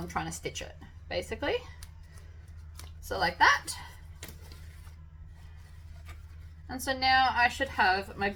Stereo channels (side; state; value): both; identical; correlation 1.00